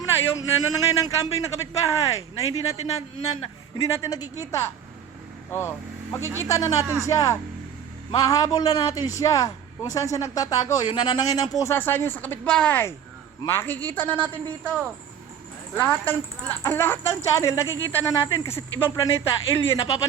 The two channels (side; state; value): left; quieter; 8.6 dB